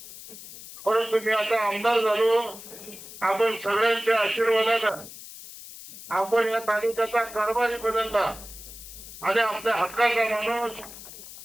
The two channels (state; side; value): noise; left; hiss, 15 dB below the sound